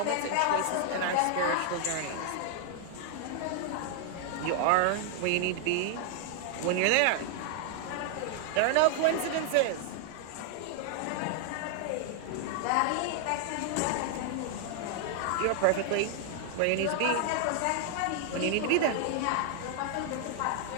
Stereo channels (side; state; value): both; different; correlation 0.00